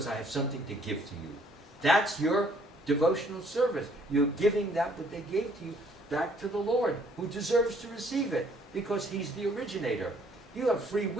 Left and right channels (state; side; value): normal; both; correlation 0.63